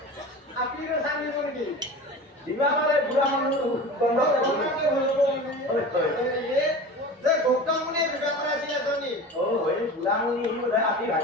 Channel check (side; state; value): both; normal; correlation 0.34